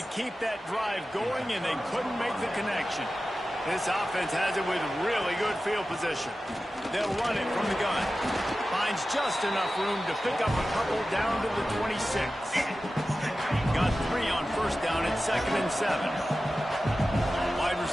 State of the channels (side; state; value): both; normal; correlation 0.94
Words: to keep that drive going, and they couldn't make the connection. This offense has it with really good field position. They'll run it from the gun. Finds just enough room to pick up a couple down to the 26. Got 3 on first down at 2nd and 7. Wide